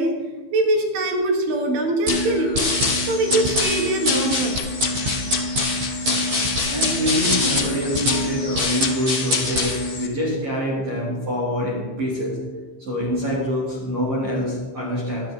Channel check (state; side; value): late; left; 15 ms